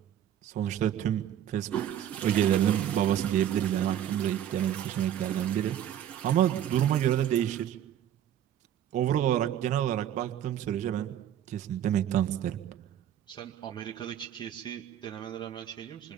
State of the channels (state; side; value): quieter; left; 10.7 dB